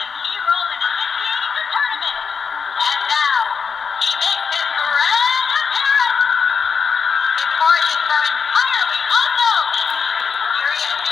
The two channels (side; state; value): right; quieter; 5.8 dB